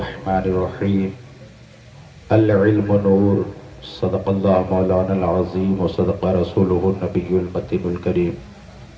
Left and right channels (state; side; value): identical; both; correlation 1.00